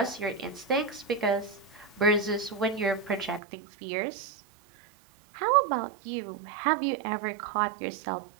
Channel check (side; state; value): left; drops out; at 3.4 s